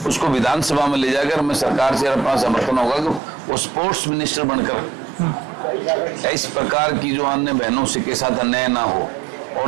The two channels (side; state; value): left; drops out; at 3.2 s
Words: उसको विधानसभा में ले जाकर मैं सरकार से अपना समर्थन होगा कि वो स्पोर्ट्स मिनिस्टर बनकर इस प्रकार की जो अन्य बहनों से के साथ अन्याय ना हो।